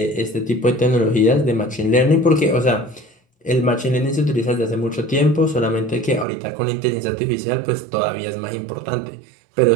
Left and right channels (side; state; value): left; drops out; at 6.2 s